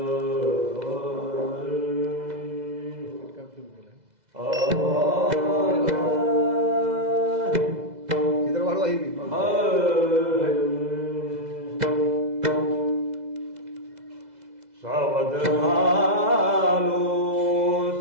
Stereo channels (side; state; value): left; late; 2.0 ms